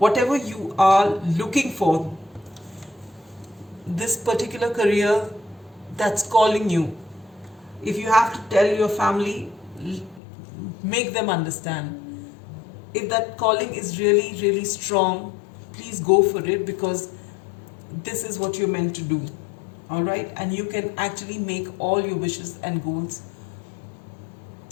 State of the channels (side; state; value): right; drops out; at 10.2 s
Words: you are looking for, this particular career that's calling you, if you have to tell your family, make them understand. If that calling is really, really strong, please go for it, because this is what you're meant to do. All right? And you can actually make all your wishes and goals,